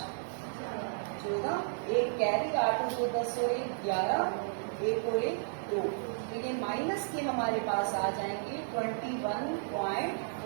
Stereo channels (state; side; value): silent; left; 56 dB below the other